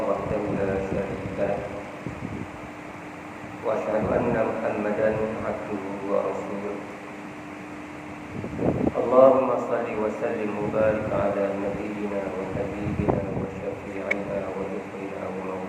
وحده لا شريك له وأشهد أن محمدا عبده ورسوله. اللهم صل وسلم وبارك على نبينا وحبيبنا وشفيعنا ونصرنا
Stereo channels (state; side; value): identical; both; correlation 1.00